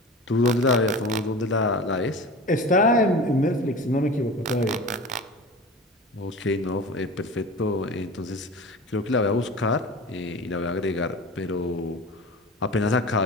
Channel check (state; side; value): normal; both; correlation 0.34